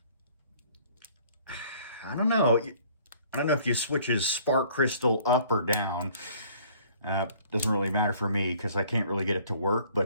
don't know. I don't know if you switch his spark crystal up or down. Doesn't really matter for me because I can't really get it to work.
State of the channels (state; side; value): inverted; both; correlation -0.56